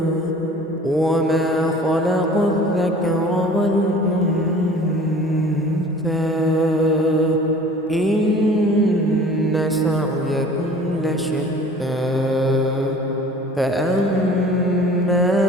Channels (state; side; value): normal; both; correlation 0.47